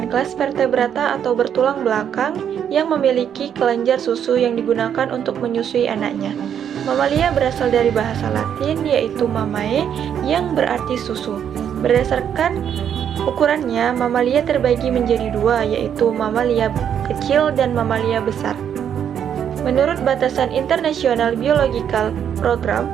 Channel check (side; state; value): left; quieter; 8.8 dB